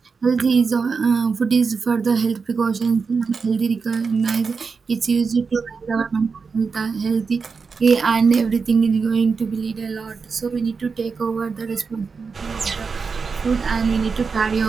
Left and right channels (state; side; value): quieter; left; 5.0 dB